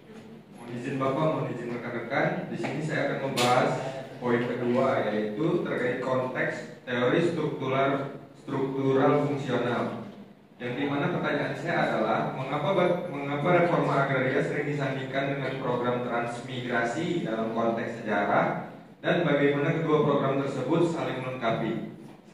Mohon izin Bapak, mohon izin rekan-rekan. Di sini saya akan membahas poin kedua, yaitu terkait konteks teori struktural fungsional. Yang dimana pertanyaan saya adalah mengapa reforma agraria sering disandingkan dengan program transmigrasi dalam konteks sejarah dan bagaimana kedua program tersebut saling melengkapi.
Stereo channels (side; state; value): both; identical; correlation 1.00